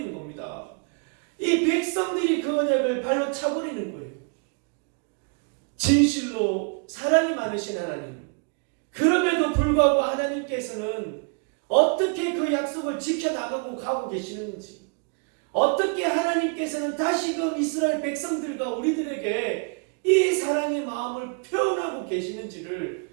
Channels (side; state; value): left; quieter; 39.2 dB